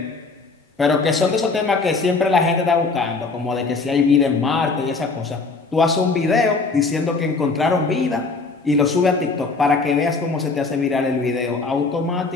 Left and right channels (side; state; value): right; quieter; 4.0 dB